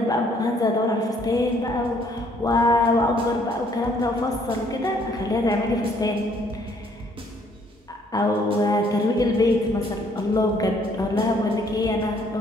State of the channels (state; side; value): normal; both; correlation 0.64